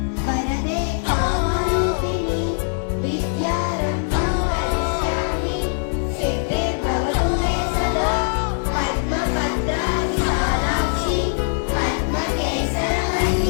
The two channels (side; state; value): right; silent; digital silence